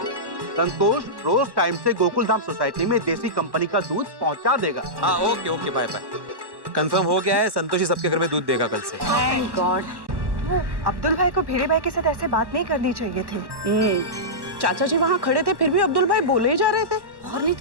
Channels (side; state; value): left; late; 1.1 ms